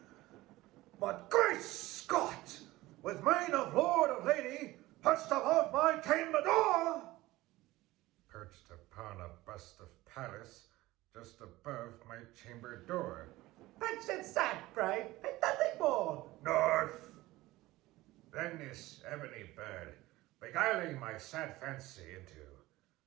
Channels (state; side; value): quieter; left; 18.3 dB